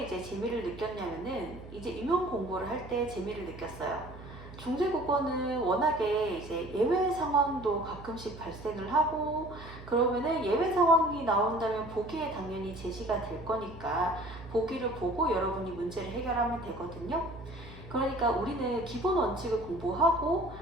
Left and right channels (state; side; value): noise; right; hum, 15 dB below the sound